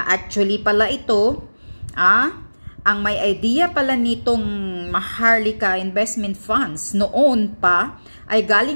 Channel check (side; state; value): both; inverted; correlation -1.00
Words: actually pala ito, ang may idea pala nitong Maharlika investment funds noon pa ay